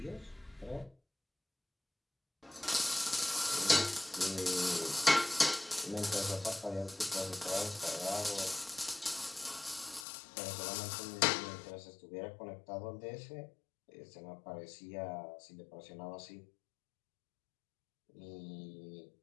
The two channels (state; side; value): drops out; right; at 10.1 s